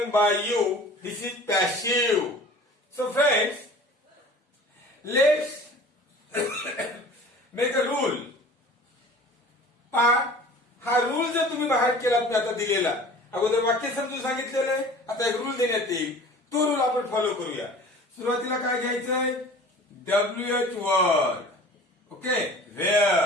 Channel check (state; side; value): normal; both; correlation 0.43